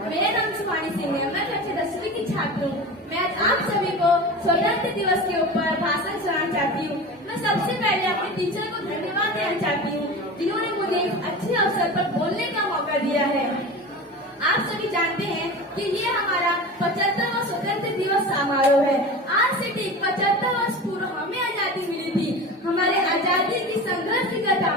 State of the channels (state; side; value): normal; both; correlation 0.31